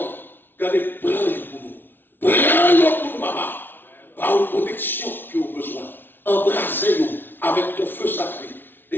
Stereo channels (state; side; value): late; right; 0.099 ms